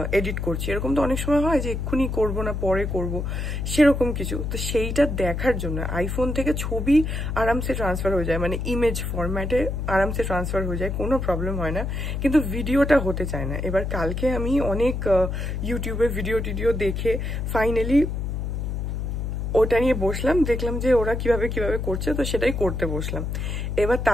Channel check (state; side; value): noise; left; hum, 3 dB below the sound